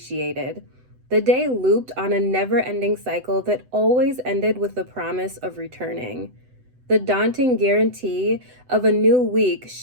The day looped on a never-ending cycle that always ended with the promise of returning. The daunting guarantee of a new week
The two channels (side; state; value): left; late; 7.9 ms